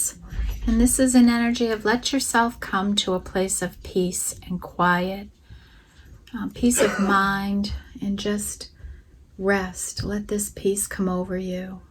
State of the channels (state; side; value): identical; both; correlation 1.00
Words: and this is an energy of let yourself come to a place of peace and quiet, peace of mind, and just rest. Let this peace come over you.